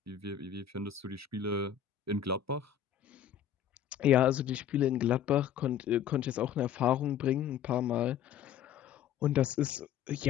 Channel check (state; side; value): quieter; right; 9.5 dB